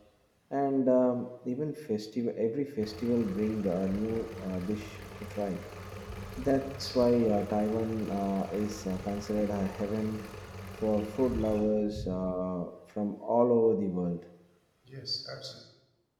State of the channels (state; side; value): identical; both; correlation 1.00